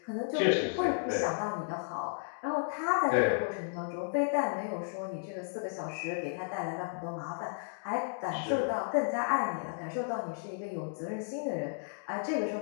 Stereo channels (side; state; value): right; silent; digital silence